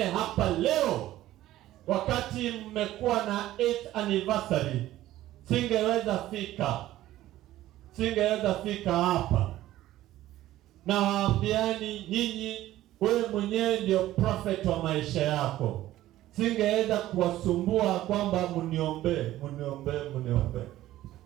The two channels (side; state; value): left; quieter; 14.7 dB